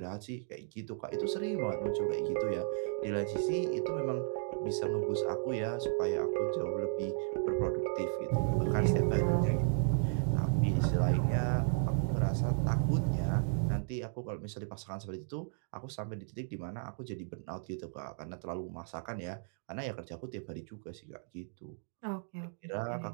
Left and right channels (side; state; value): left; silent; digital silence